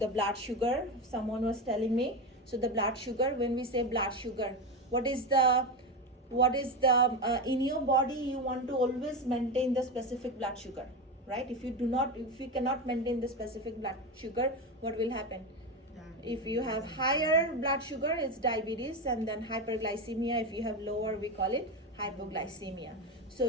blood sugar, someone was telling me. So the blood sugar, when we say blood sugar, what is the in your body, you want to always maintain the specific blood sugar, right? If you cannot maintain the specific blood sugar, what will happen? If you have higher blood sugar, it's diabetes, and then hyperglycemia. If you have lower, we call it hypoglycemia. So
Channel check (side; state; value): both; normal; correlation 0.17